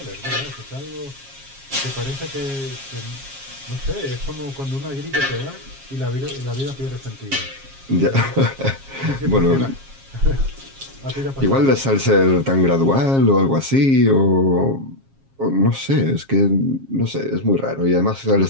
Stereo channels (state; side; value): late; left; 7.4 ms